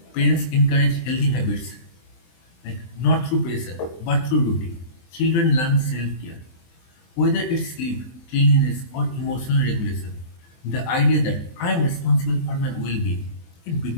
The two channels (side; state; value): right; late; 23 ms